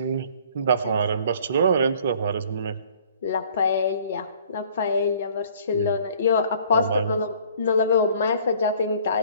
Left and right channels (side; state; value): both; inverted; correlation -0.55